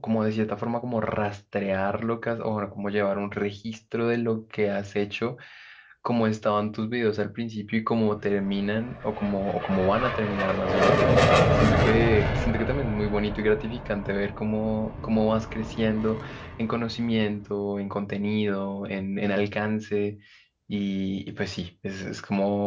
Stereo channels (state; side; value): identical; both; correlation 1.00